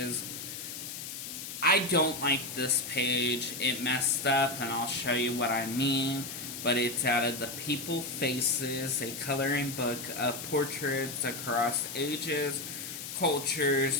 I don't like this page. It messed up, and I'll show you what I mean. But it's out of the People Faces, a coloring book of portraits across ages,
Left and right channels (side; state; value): left; noise; hiss, 8 dB below the sound